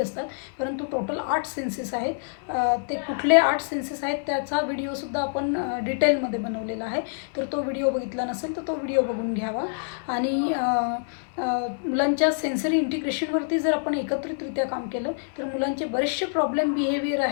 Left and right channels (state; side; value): silent; right; 61 dB below the other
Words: परंतु टोटल 8 सेन्सेस आहेत. ते कुठले 8 सेन्सेस आहेत त्याचा व्हिडिओसुद्धा आपण डिटेलमध्ये बनवलेला आहे. तर तो व्हिडिओ बघितला नसेल तर तो व्हिडिओ बघून घ्यावा. आणि मुलांच्या सेन्सरी इंटिग्रेशनवरती जर आपण एकत्रितरित्या काम केलं तर मुलांचे बरेचसे प्रॉब्लेम बिहेवियर